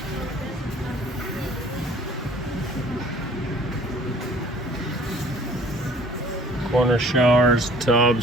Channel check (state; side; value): normal; both; correlation 0.53